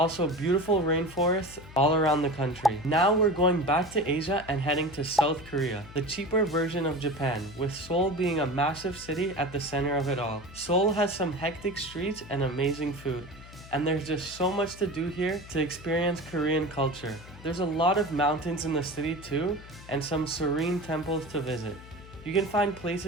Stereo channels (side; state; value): left; noise; hum, 18 dB below the sound